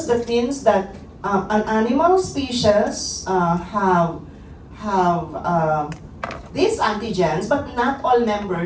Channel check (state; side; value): identical; both; correlation 1.00